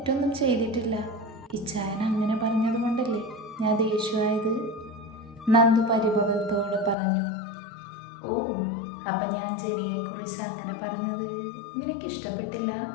ചെയ്തിട്ടില്ല. ഇച്ചായൻ അങ്ങനെ പറഞ്ഞതുകൊണ്ടല്ലേ ഞാൻ ദേഷ്യമായത്, നന്ദു പരിഭവത്തോടെ പറഞ്ഞു. ഓ, അപ്പം ഞാൻ ജനിയെക്കുറിച്ച് അങ്ങനെ പറഞ്ഞത് നിനക്കിഷ്ടപ്പെട്ടില്ല?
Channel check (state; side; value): drops out; right; at 7.0 s